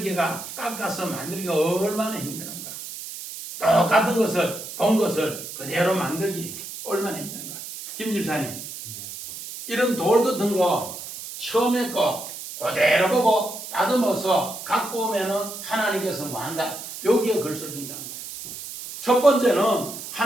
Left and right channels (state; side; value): noise; right; hiss, 10 dB below the sound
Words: 깎아서 만들기가 얼마나 힘드는가. 똑같은 것을 본 것을 그대로 만들기 얼마나 힘든가. 김 집사님, 이런 돌 같은 거 처음에 거 그대로 보고 다듬어서 갖고 오면은 하나님께서 뭐 한다. 여기에 글 써준다는 거예요. 첫 번째는